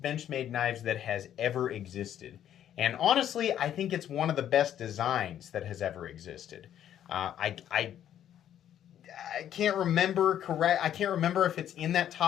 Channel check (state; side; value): quieter; right; 10.6 dB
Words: Benchmade knives that has ever existed. And honestly, I think it's one of the best designs that has ever existed. I can't remember I can't remember if it's in that